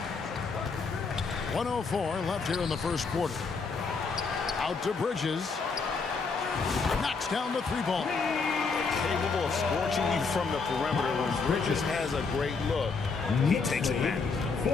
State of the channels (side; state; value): right; quieter; 4.7 dB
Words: 1:04 left here in the first quarter. Out to Bridges. Knocks down the 3 ball. Capable of scorching you from the perimeter. When Bridges has a great look, he takes it back.